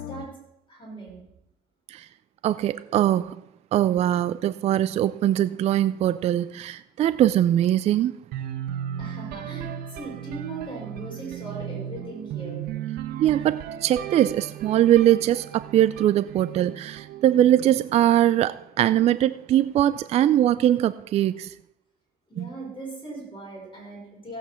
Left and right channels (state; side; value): quieter; left; 11.5 dB